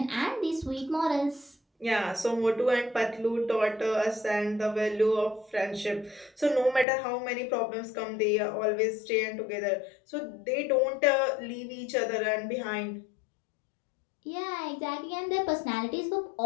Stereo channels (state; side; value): drops out; right; at 6.9 s